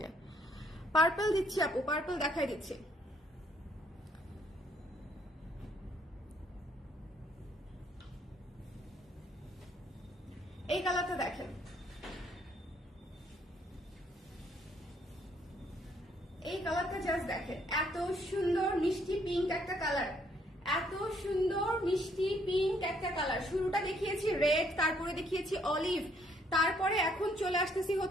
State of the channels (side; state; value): both; normal; correlation 0.68